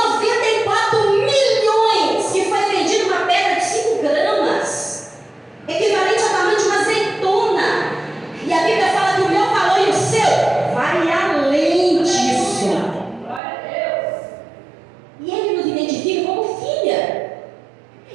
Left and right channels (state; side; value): drops out; left; at 13.4 s